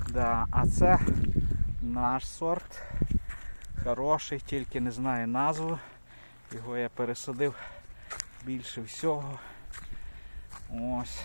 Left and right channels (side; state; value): both; inverted; correlation -1.00